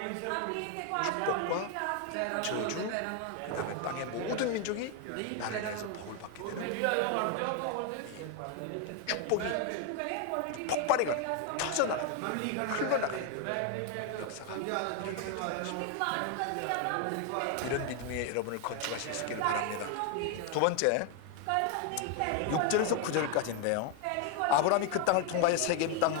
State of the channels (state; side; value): different; both; correlation 0.01